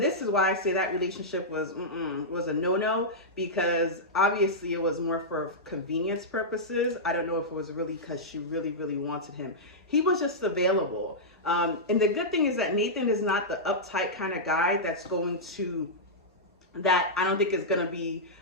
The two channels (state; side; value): normal; both; correlation -0.11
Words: this is why I say that relationship was a no-no, because obviously it was more for convenience purposes. I don't know if it was really because she really, really wanted him. He was just available. And the good thing is that Nathan is not the uptight kind of guy that's going to, that I don't think is going to be